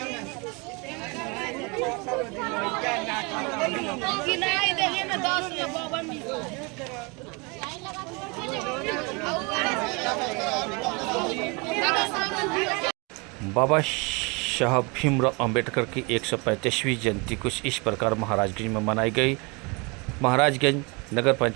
बाबा साहब भीमराव अंबेडकर की 135वीं जयंती कुछ इस प्रकार महाराजगंज में मनाई गई। महाराजगंज नगर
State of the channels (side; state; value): left; quieter; 29.5 dB